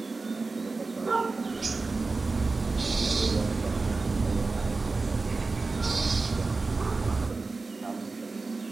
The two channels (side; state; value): left; quieter; 3.8 dB